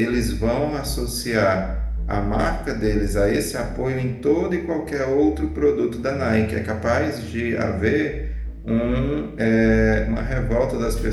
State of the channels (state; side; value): identical; both; correlation 1.00